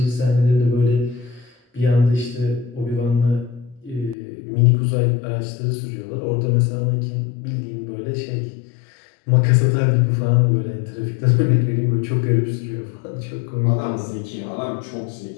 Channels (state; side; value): drops out; right; at 4.2 s